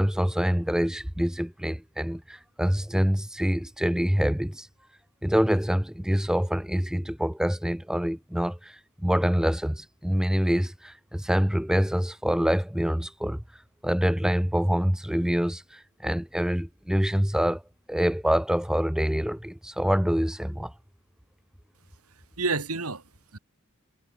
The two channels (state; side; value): normal; both; correlation 0.97